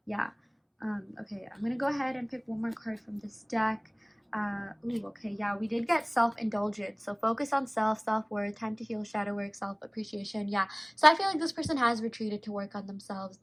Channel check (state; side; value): identical; both; correlation 1.00